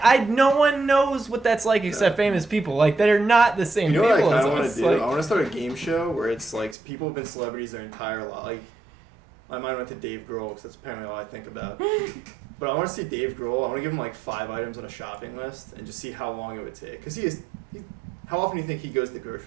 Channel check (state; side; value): drops out; left; at 6.8 s